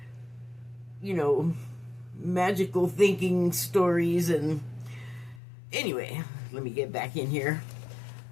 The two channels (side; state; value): right; drops out; at 5.4 s